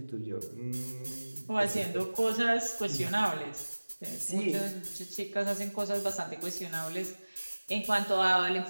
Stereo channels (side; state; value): both; inverted; correlation -1.00